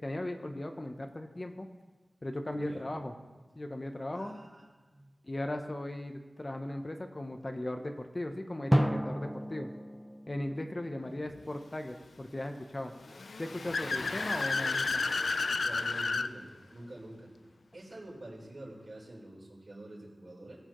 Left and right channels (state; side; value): normal; both; correlation 0.97